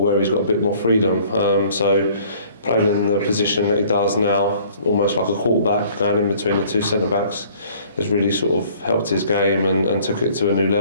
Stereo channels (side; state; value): both; inverted; correlation -0.55